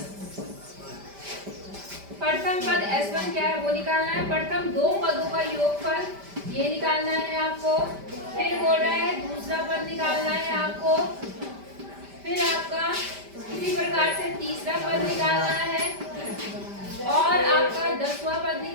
प्रथम पद S1 क्या है वो निकालना है। प्रथम दो पदों का योगफल ये निकालना है आपको। फिर बोल रहा है दूसरा पद निकालना है आपको। फिर आपका इसी प्रकार से तीसरा पद निकालना है और आपका 10वां पद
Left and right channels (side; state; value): left; late; 5.1 ms